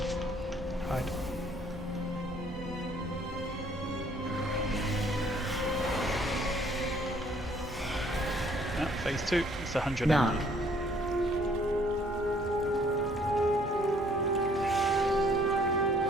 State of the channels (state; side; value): normal; both; correlation 0.61